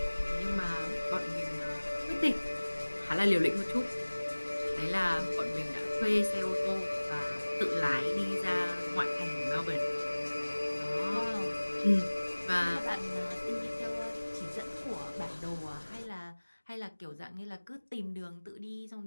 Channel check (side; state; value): both; inverted; correlation -1.00